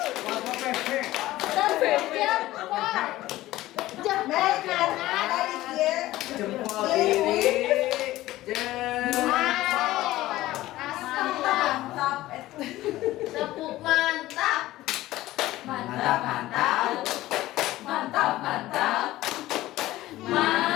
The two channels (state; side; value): quieter; right; 16.3 dB